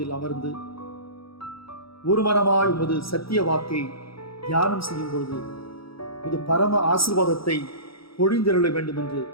அமர்ந்து ஒரு மனமாய் உமது சத்திய வாக்கை தியானம் செய்யும் பொழுது உமது பரம ஆசீர்வாதத்தை பொழிந்தருள வேண்டும் என்று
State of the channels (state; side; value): late; right; 0.75 ms